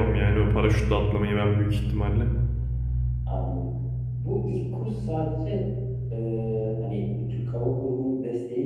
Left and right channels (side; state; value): both; identical; correlation 1.00